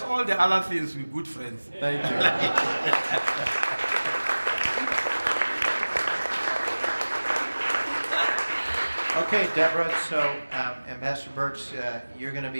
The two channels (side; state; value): both; inverted; correlation -1.00